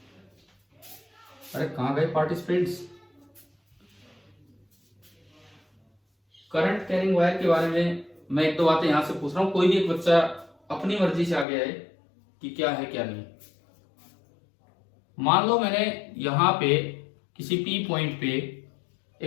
अरे कहाँ गए पार्टिसिपेंट्स? करंट कैरिंग वायर के बारे में मैं एक दो बातें यहां से पूछ रहा हूँ, कोई भी एक बच्चा अपनी मर्जी से आगे आए कि क्या है क्या नहीं। मान लो मैंने यहां पे किसी पी पॉइंट पे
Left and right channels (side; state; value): right; drops out; at 11.5 s